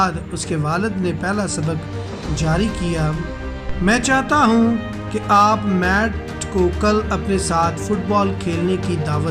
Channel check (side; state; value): both; identical; correlation 1.00